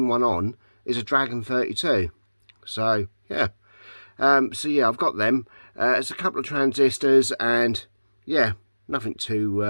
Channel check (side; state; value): both; inverted; correlation -1.00